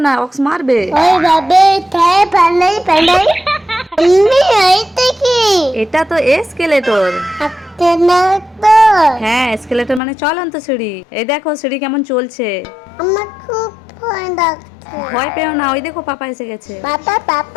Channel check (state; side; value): drops out; right; at 10.0 s